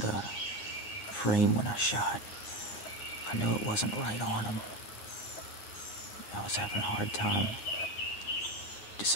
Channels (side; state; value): right; late; 10 ms